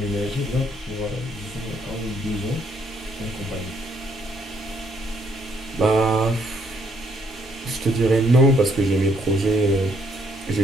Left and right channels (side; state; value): both; normal; correlation 0.70